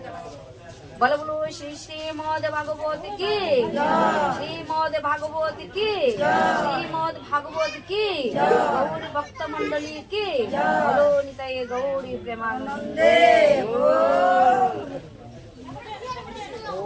বলো বলো শ্রী শ্রীমদ ভাগবত কি, শ্রীমদ ভাগবত কি, শ্রীমদ ভাগবত কি, গৌরী ভক্ত মন্ডলী কি, বলো নিতাই গৌরী প্রেমানন্দে।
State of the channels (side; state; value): both; identical; correlation 1.00